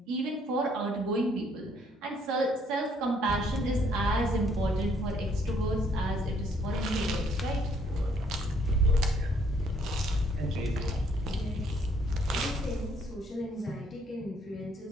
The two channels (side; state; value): both; normal; correlation 0.66